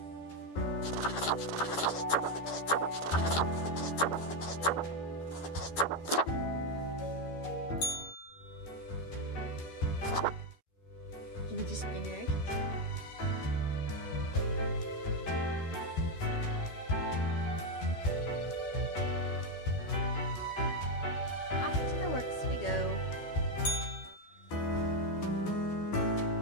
Give me the spinner. Off to the works we go.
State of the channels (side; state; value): right; late; 12 ms